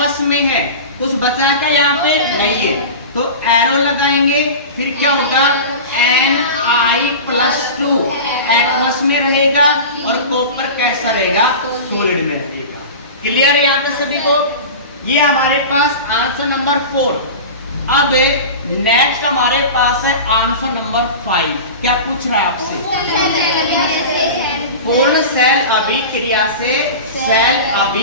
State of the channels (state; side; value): inverted; both; correlation -0.31